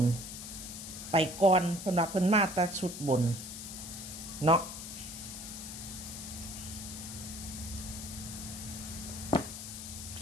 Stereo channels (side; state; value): left; noise; hiss, 9 dB below the sound